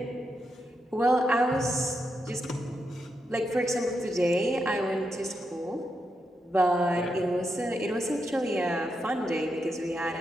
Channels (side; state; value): both; normal; correlation 0.84